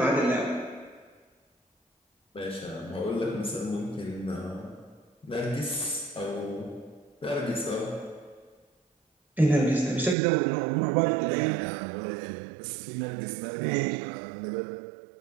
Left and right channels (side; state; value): left; drops out; at 10.2 s